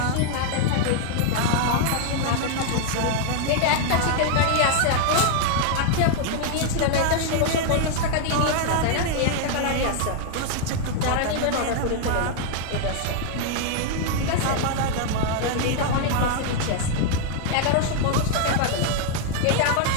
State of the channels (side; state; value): both; different; correlation 0.00